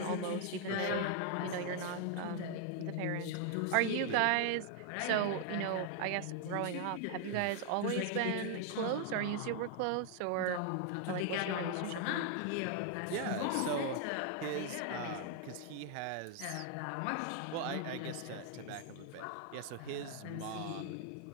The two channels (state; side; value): different; both; correlation 0.00